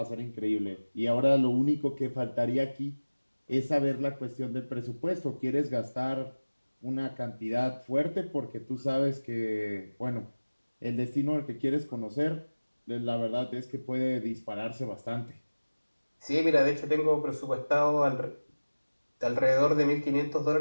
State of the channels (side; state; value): both; inverted; correlation -1.00